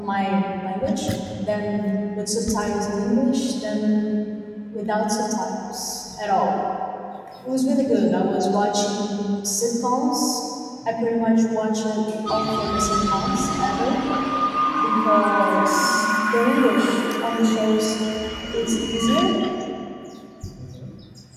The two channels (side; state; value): both; identical; correlation 1.00